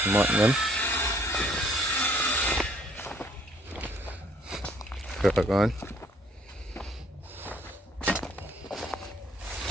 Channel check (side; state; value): both; normal; correlation 0.62